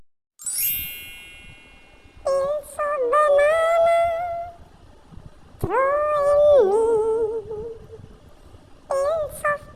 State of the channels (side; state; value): both; identical; correlation 1.00